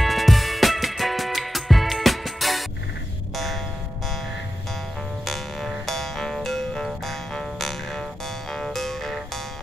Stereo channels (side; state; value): both; normal; correlation 0.91